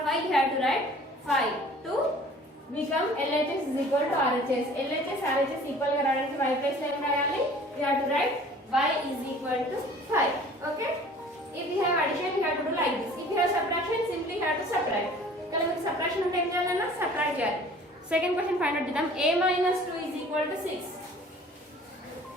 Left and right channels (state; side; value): normal; both; correlation 0.49